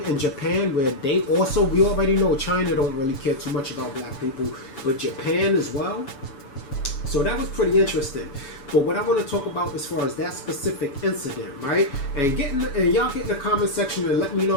in Japan where they also, we already know China don't really care too much about black people, but Japan as well? So that was pretty interesting. But what I want to talk about as far as that specific incident, right? And y'all get in the comment section and let me know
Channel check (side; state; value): right; late; 7.0 ms